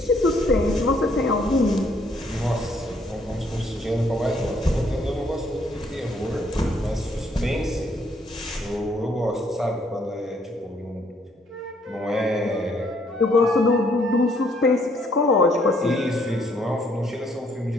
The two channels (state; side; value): normal; both; correlation 0.67